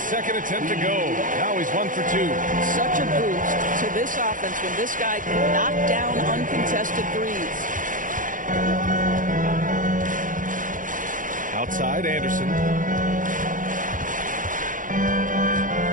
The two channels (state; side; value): late; left; 0.38 ms